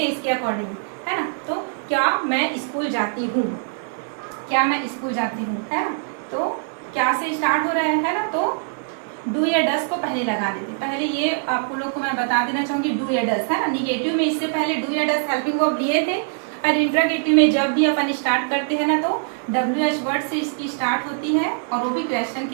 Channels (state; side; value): silent; left; digital silence